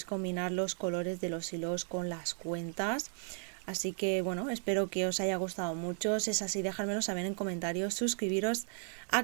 combinar los colores de los hilos con las cuentas. Así que bueno, espero que os haya gustado mucho. Si es así, dejármelo saber en comentarios, suscribiros,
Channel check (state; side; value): silent; left; 54 dB below the other